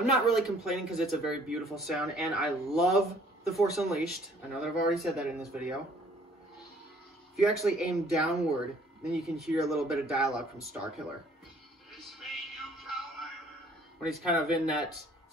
not really complaining because it's a very beautiful sound, and I love The Force Unleashed. I know that I've already said that in this video. If you actually aim downward, then you can hear a little bit of dialogue from Starkiller. It's me, you coward! When he's kind of in that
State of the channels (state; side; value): normal; both; correlation 0.58